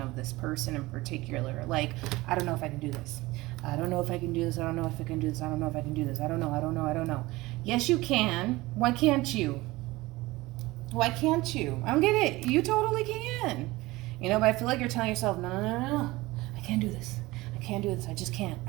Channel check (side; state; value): left; quieter; 20.1 dB